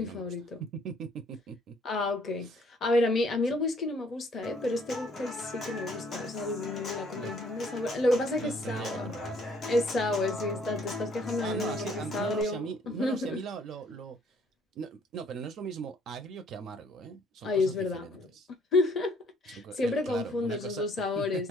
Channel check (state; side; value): normal; both; correlation 0.62